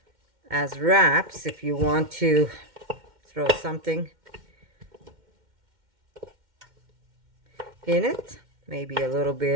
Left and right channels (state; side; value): late; left; 2.1 ms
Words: as wraps if you want to throw something in it, maybe a little